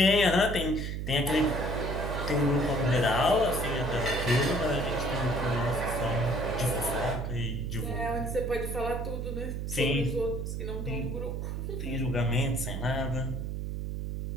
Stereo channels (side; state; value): right; noise; hum, 3 dB below the sound